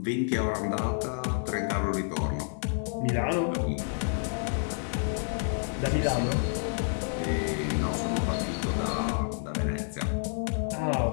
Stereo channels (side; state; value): right; silent; digital silence